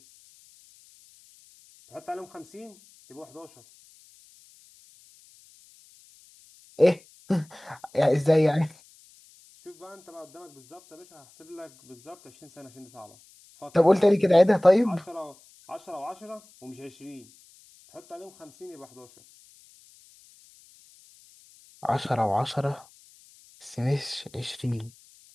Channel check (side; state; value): left; noise; hiss, 27 dB below the sound